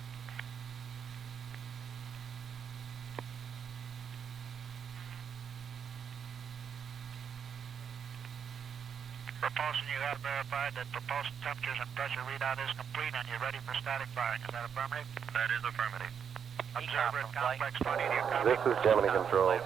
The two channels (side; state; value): left; quieter; 7.5 dB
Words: Propulsion, you have verified that propulsion temperatures and pressure readout is complete and you're ready for static firing. Is that affirmative? That is affirmative. Observer at complex 20. This is Gemini control